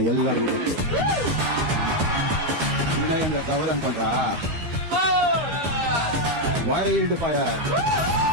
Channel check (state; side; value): late; left; 13 ms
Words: ಎಲ್ಲರಿಗೂ ಗೊತ್ತು. ವಿನಯ್ ಅಂದ್ರೆ ಕವರ್ ಅನ್ಕೊಂಡ್ರ wild fire.